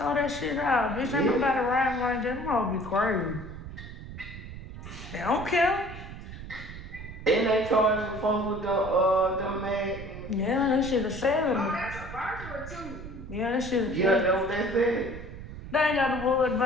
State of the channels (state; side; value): noise; right; rumble, 12 dB below the sound